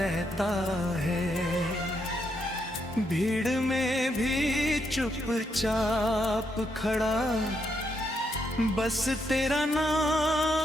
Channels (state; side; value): noise; right; hum, 21 dB below the sound